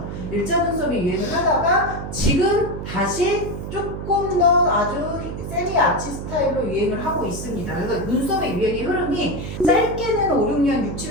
일자 눈썹이 유행을 하다가 지금 다시 조금 더 아주 세미 아치 스타일로 유행을 하고 있습니다. 그래서 눈썹의 유행의 흐름이 짧게는 5, 6년, 6,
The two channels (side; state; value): right; noise; hum, 7 dB below the sound